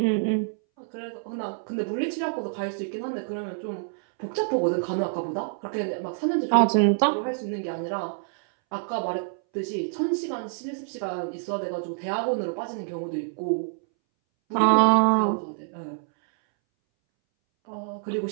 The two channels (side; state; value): left; silent; 60 dB below the other